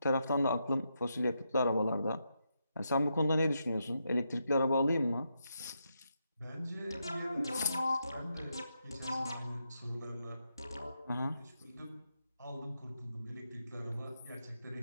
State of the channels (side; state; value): both; inverted; correlation -0.83